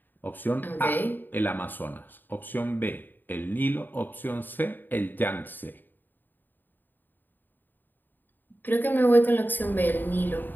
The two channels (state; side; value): late; right; 0.091 ms